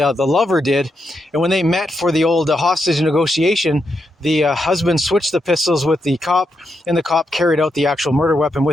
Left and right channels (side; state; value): both; normal; correlation 0.83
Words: lover did, and when they met for the old hostage negotiation, the husband switched the pistols with the cop, and the cop carried out the actual murder weapon